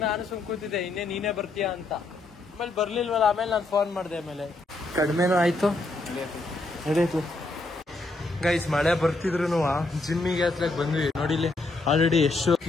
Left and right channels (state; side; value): quieter; right; 3.0 dB